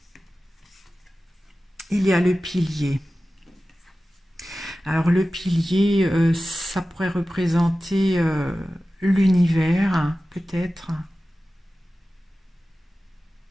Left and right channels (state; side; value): normal; both; correlation 0.95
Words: Il y a le pilier. Alors le pilier, ça pourrait représenter l'univers, peut-être.